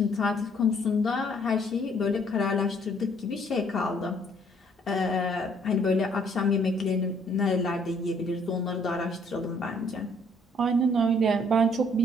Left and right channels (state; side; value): normal; both; correlation 0.63